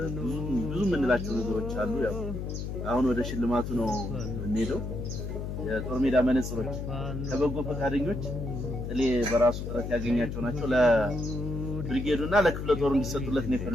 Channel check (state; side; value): noise; left; hum, 5 dB below the sound